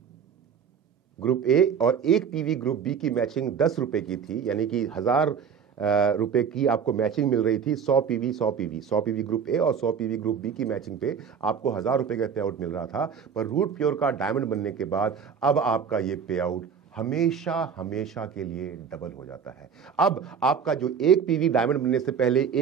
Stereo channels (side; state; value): left; quieter; 7.0 dB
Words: ग्रुप ए और एक पीवी ग्रुप बी की मैचिंग 10 रुपए की थी, यानी कि 1000 रुपए की आपको मैचिंग मिल रही थी। 100 पीवी ग्रुप ए और 100 पीवी ग्रुप बी की मैचिंग पे आपको 1000 रुपए का पे आउट मिल रहा था। पर रूट प्योर का डायमंड बनने के बाद अब आपका ये पे आउट हमेशा हमेशा के लिए डबल हो जाता है। अब आपका जो एक पीवी डायमंड बनने से पहले